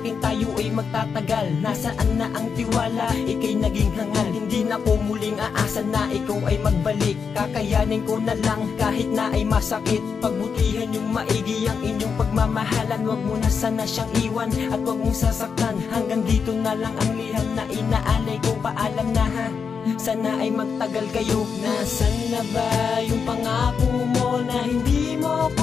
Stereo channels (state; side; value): quieter; right; 6.0 dB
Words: tayo ay magtatagal. Nasaan na ang tiwala? Ika'y naging hangal. Hindi na ko muling aasa na ikaw ay magbalik. Kakayanin ko na lang kahit na ay masakit. Pagbutihan yung maigi ang inyong pagmamahalan. Wag mo na sana siyang iwan at wag mong sasaktan. Hanggang dito na lang ang liham na inaalay ko. Paalam na ha, sana ay magtagal kayo. Nasaan na ba yung pangako mo na hindi mo